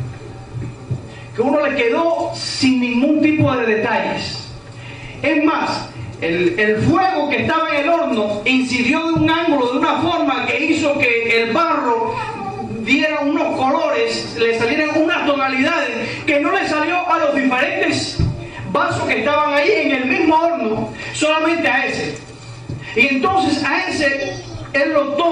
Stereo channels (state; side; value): identical; both; correlation 1.00